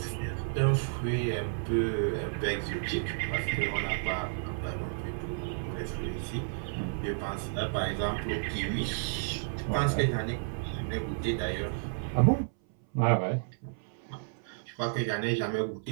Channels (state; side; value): silent; left; 57 dB below the other